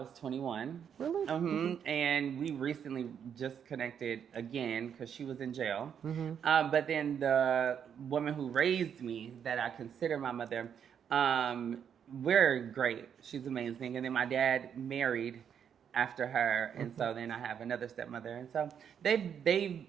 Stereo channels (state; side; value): quieter; left; 8.1 dB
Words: 21. Really? And we recently just connected again because she was in jail. But then the woman who raised me, that I consider my mother, we're great. She's amazing. And then my dad married after her, and so then I have another stepmother. And so they've